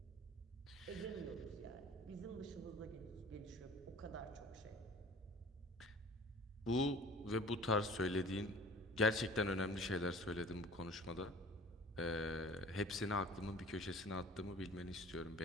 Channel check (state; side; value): normal; both; correlation 0.46